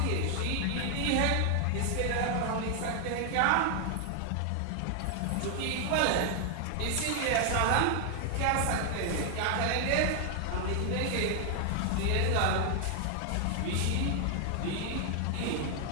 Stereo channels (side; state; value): both; different; correlation 0.00